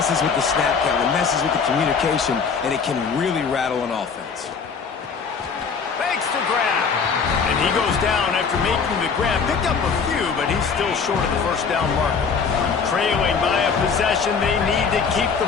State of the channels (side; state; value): right; quieter; 5.7 dB